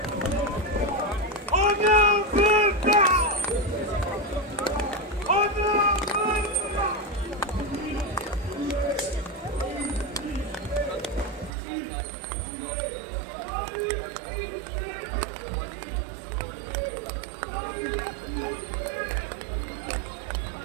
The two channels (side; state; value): left; drops out; at 11.5 s